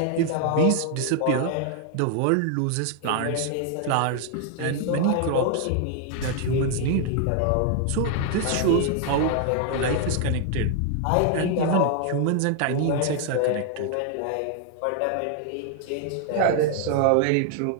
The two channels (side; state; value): both; different; correlation 0.00